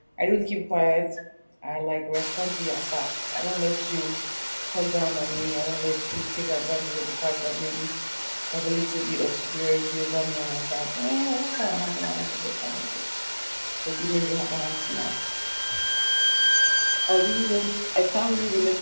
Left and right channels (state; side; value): inverted; both; correlation -1.00